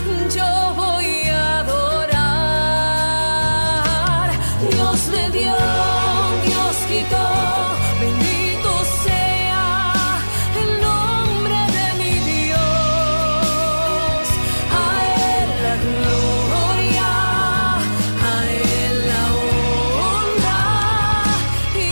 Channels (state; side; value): inverted; both; correlation -1.00